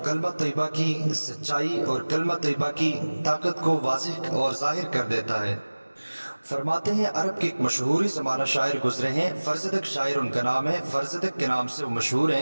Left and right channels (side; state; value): both; inverted; correlation -1.00